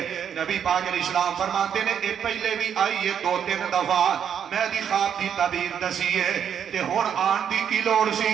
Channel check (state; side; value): quieter; left; 8.4 dB